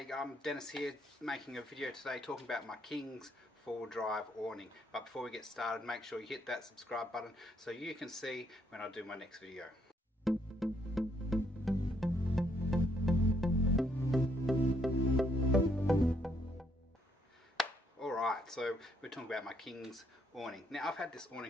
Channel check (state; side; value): normal; both; correlation 0.71